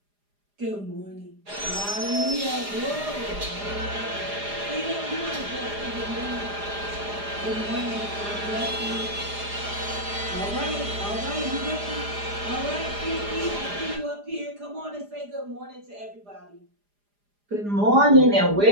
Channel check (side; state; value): left; late; 4.9 ms